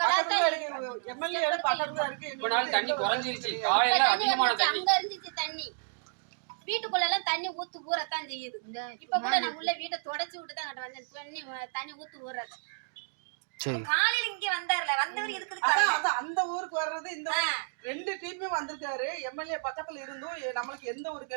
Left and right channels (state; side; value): silent; left; digital silence